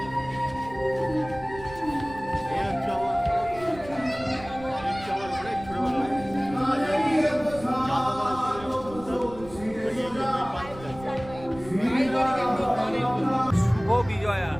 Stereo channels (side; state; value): right; noise; rumble, 17 dB below the sound